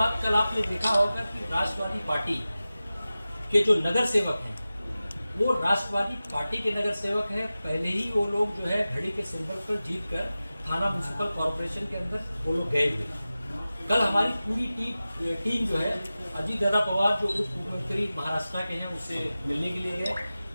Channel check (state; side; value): inverted; both; correlation -0.96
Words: कल आपने देखा होगा कि राष्ट्रवादी पार्टी के जो नगर सेवक हैं, वो राष्ट्रवादी पार्टी के नगर सेवक हैं। पहले ही वो लोग जो है घड़ी के सिंबल पर जीत कर थाना म्यूनसिपल कॉर्पोरेशन के अंदर वो लोग गए हुए। कल हमारी पूरी टीम जो है, अजीत दादा पवार जो उप मुख्यमंत्री महाराष्ट्र के हैं, उससे मिलने के लिए गए।